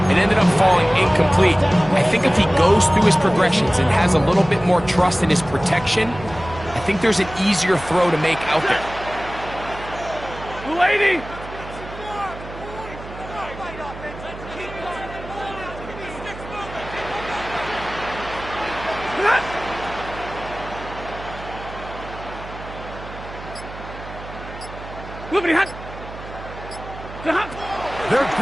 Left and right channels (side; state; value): right; noise; hum, 13 dB below the sound